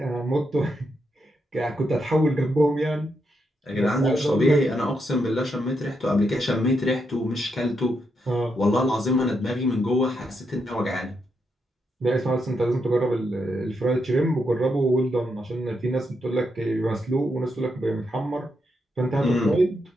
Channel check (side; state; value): both; normal; correlation 0.81